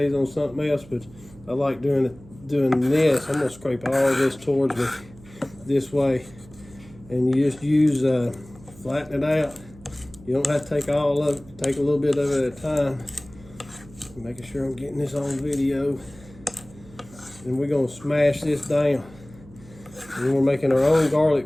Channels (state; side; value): noise; right; hum, 22 dB below the sound